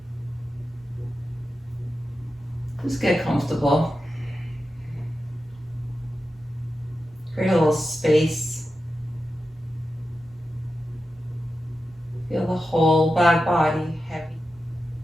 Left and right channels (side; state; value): both; normal; correlation 0.91